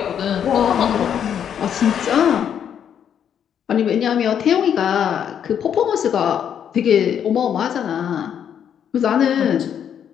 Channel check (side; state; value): right; quieter; 8.7 dB